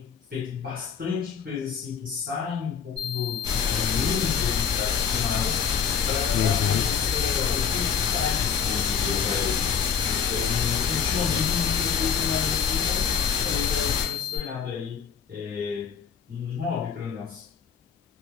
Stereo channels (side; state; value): right; quieter; 7.0 dB